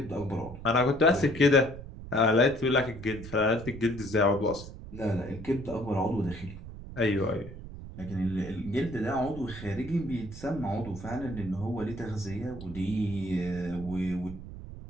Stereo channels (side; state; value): right; noise; rumble, 12 dB below the sound